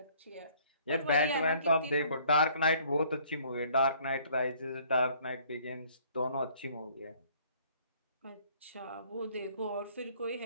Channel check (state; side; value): inverted; both; correlation -0.59